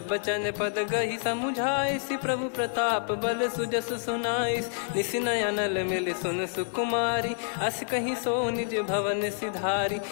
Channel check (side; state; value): right; silent; 59 dB below the other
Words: बचन पद गहि समुझाए, सि प्रभु प्रताप बल सुजस सुनाइस। निस नयनल मिल सुन सुकुमारी, अस कहि सो निज भवन सिधारी।